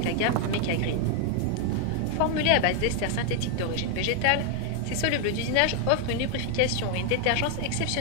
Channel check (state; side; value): different; both; correlation 0.00